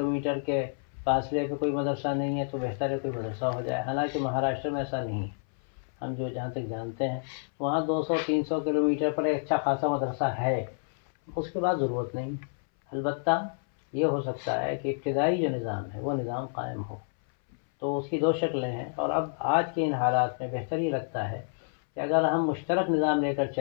کے فاصلے پہ کوئی مدرسہ نہیں ہے تو بہتر ہے کوئی مدرسہ ہو جائے، حالانکہ مہاراشٹر میں ایسا نہیں ہے، ہم جو جہاں تک جانتے ہیں وہاں 200 300 کلومیٹر پر ایک اچھا خاصا مدرسہ ہے، اس کے بعد ضرورت نہیں۔ البتہ یہ ہو سکتا ہے کہ ابتدائی جو نظام ہے وہ نظام قائم ہو، تو اس کی دو شکلیں ہیں، اور اب آج کے ان حالات میں بہتر یہ لگتا ہے کہ اگر ہم مشترک نظام لے کر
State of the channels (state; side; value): silent; right; 59 dB below the other